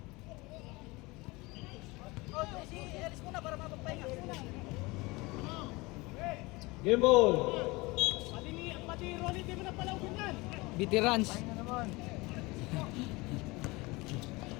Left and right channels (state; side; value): quieter; right; 23.4 dB